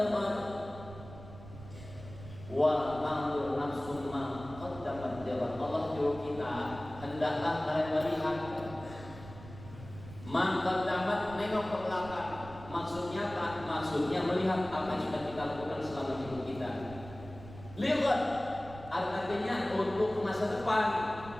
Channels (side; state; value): right; noise; rumble, 15 dB below the sound